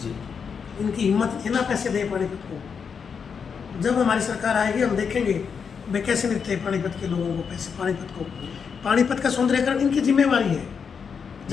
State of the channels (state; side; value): quieter; right; 6.3 dB